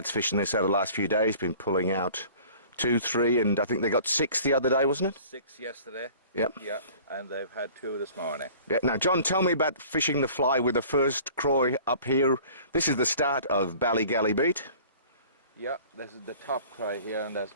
fishing this over the last few days, been pulling out 2, 3 and I think they got 6 the other day, wasn't it? 6 yesterday. Yep. Yeah, and they've had 2 this morning. Yeah. Now, John, tell me about fishing the fly with the first croy up here. This is the start of Ballygally Beach. Yeah, this is the top cry here, and there's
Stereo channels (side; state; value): both; inverted; correlation -0.47